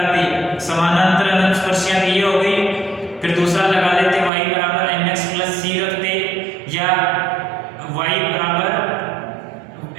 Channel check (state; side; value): drops out; left; at 4.3 s